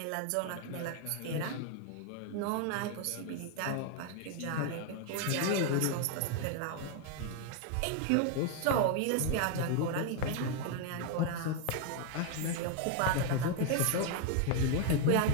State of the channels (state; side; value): different; both; correlation 0.01